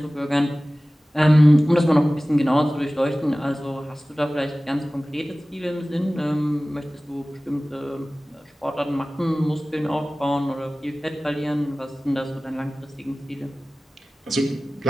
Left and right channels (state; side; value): normal; both; correlation 0.97